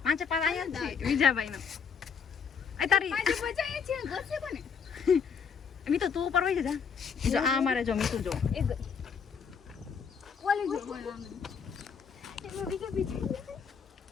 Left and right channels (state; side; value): quieter; right; 6.4 dB